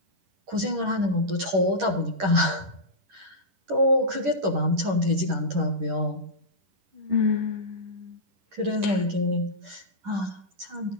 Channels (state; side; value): late; left; 10 ms